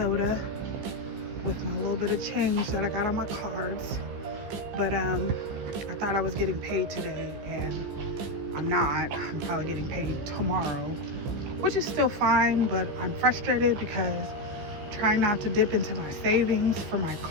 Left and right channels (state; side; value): late; left; 15 ms